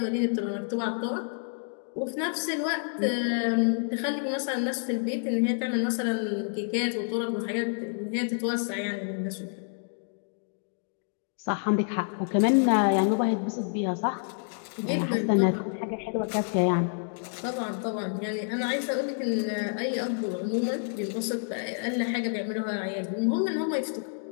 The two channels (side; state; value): right; silent; digital silence